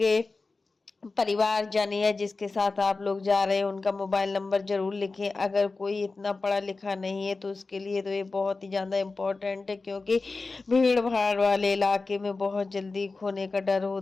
परिवार जानिए या जिसके साथ आप लोग जा रहे हैं उनका मोबाइल नंबर जरूर लिखें। अगर कोई इतना पढ़ा लिखा नहीं है तो उसके लिए तो ये बहुत ही ज़्यादा इम्पोर्टेंट है, क्योंकि भीड़ भाड़ वाले इलाके में बहुत जल्दी खोने का डर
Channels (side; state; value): right; quieter; 3.8 dB